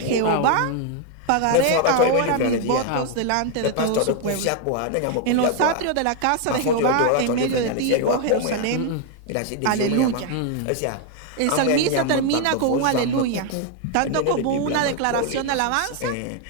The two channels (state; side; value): different; both; correlation 0.01